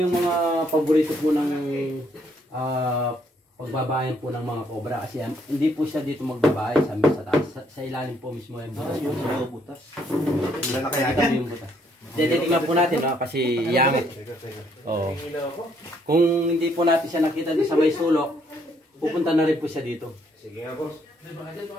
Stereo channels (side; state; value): both; normal; correlation 0.69